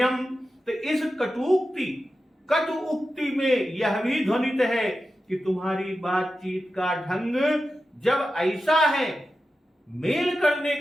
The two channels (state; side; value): normal; both; correlation 0.92